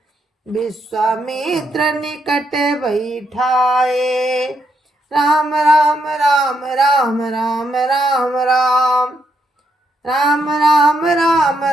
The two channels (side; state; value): both; normal; correlation 0.79